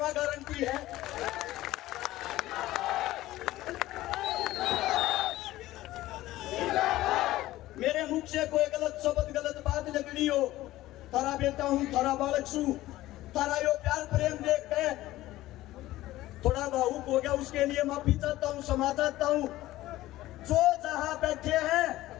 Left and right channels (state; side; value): quieter; right; 16.2 dB